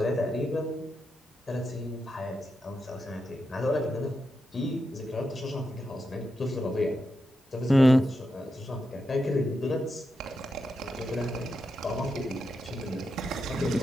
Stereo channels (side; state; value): both; normal; correlation 0.86